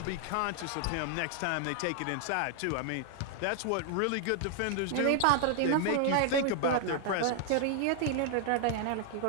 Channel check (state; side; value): different; both; correlation 0.00